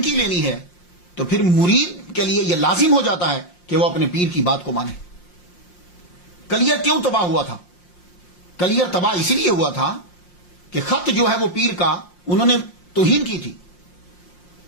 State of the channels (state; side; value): late; right; 5.6 ms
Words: کی لینی ہے تو پھر مرید کے لیے یہ لازم ہو جاتا ہے کہ وہ اپنے پیر کی بات کو مانے. کلیئر کیوں تباہ ہوا تھا؟ کلیئر تباہ اسی لیے ہوا تھا کہ خط جو ہے وہ پیر کا انہوں نے توہین کی تھی.